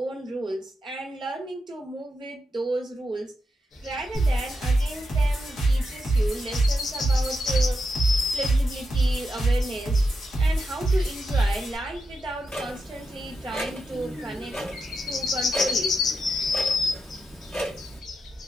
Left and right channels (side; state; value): both; normal; correlation 0.86